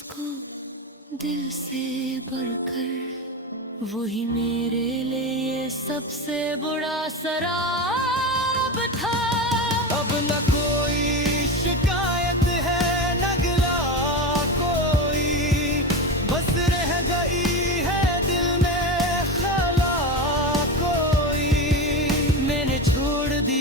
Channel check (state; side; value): normal; both; correlation 0.21